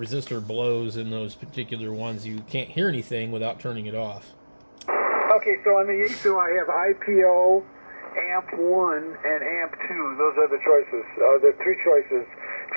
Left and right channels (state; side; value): inverted; both; correlation -1.00